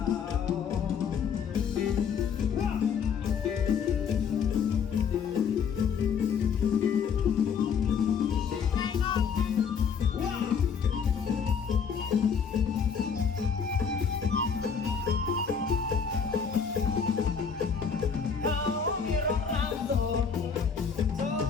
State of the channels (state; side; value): quieter; right; 6.5 dB